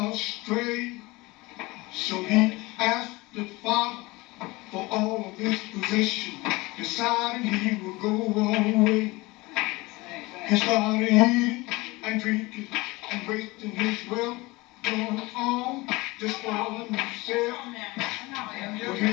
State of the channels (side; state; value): right; quieter; 22.3 dB